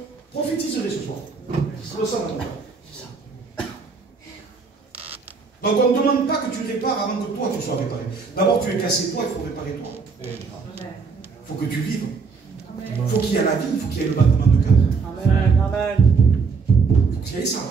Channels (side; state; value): left; quieter; 4.9 dB